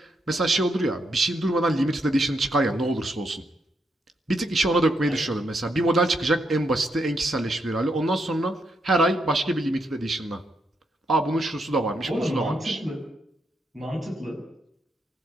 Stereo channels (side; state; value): both; normal; correlation 0.79